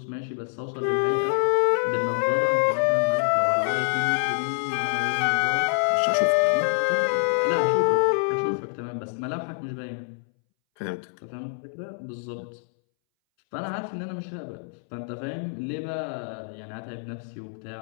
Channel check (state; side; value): silent; right; 61 dB below the other